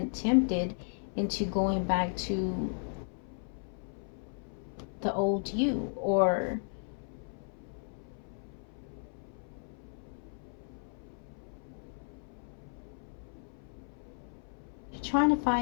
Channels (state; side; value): silent; right; 55 dB below the other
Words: tempted into going back to the old you, or trying to